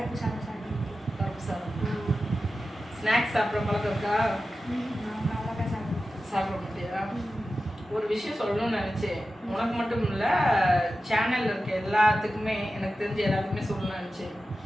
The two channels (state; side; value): normal; both; correlation 0.93